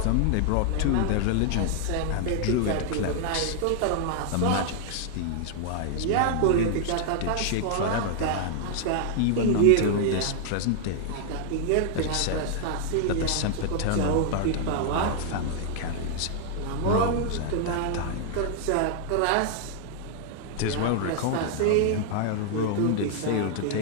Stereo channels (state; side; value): different; both; correlation 0.00